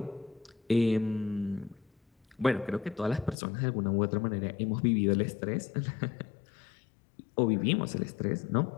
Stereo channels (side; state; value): right; drops out; at 3.4 s